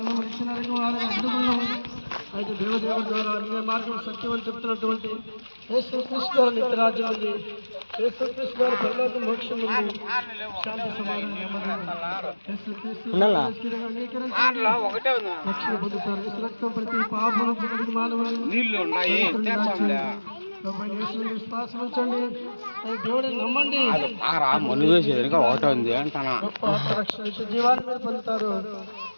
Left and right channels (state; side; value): inverted; both; correlation -1.00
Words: ఇచ్చినారని వారిని అడ్డుకున్నాం. అయితే దేవదేవుడి ద్వారా అన్య మార్గం సత్యం అని చెప్తున్నటువంటి యేసుక్రీస్తు ద్వారా నిత్యరాజ్యం ఉంది. యేసుక్రీస్తు ద్వారా పరలోక మోక్షం ఉంది. శాంతి సమాధానం రక్షణ పొందుతారు. యేసు రక్తం ప్రతి పాపం ప్రతి మానవులను విశ్వాసం ఉంచండి. దేవుడిని నమ్మండి. రక్షణ జీవాన్ని మీరు పొందుతారు.